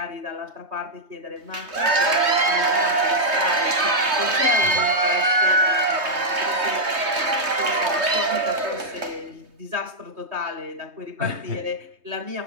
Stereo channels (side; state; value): left; late; 3.2 ms